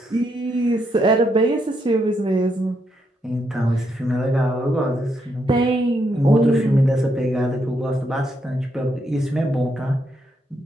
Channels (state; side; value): normal; both; correlation 0.78